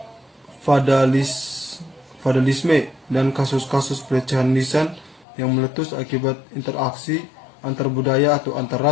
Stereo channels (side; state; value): right; drops out; at 5.2 s